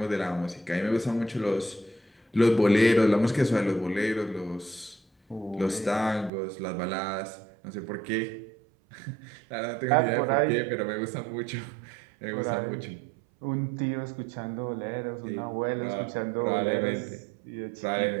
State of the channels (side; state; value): left; drops out; at 6.3 s